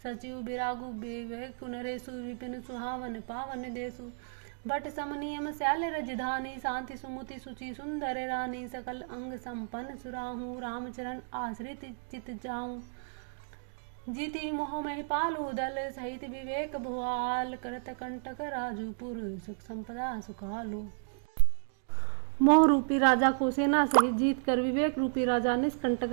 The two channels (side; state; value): left; silent; digital silence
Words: सचिव बिरागु विवेक नरेशु विपिन सुहावन पावन देसु बट समनियम शैल रजधानी शांति सुमुति सुचि सुंदर रानी सकल अंग संपन्न सुराहू रामचरण आश्रित चित जाऊं जीति मोह मह पालू दल सहित विवेक भुआल करत कंटक राजूपुर सुख संपदा सुखालू। मोह रूपी राजा को सेना सहित जीत कर विवेक रूपी राजा निष्कंटक